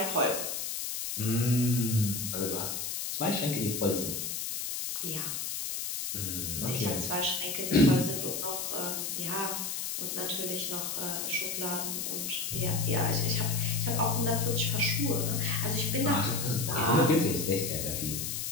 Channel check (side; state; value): left; noise; hiss, 3 dB below the sound